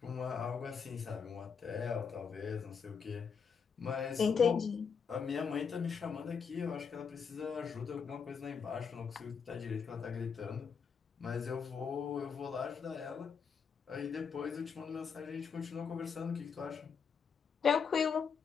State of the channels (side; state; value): right; quieter; 6.2 dB